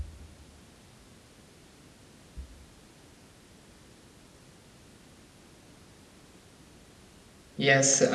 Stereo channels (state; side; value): identical; both; correlation 1.00